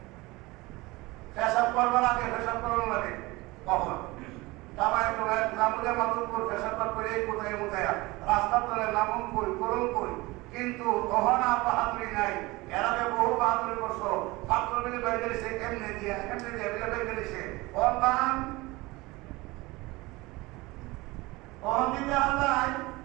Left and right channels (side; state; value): left; quieter; 21.9 dB